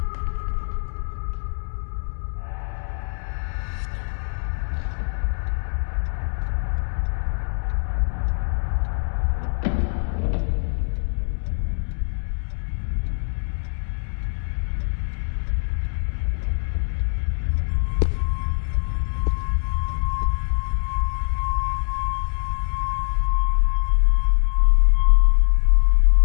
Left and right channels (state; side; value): silent; right; digital silence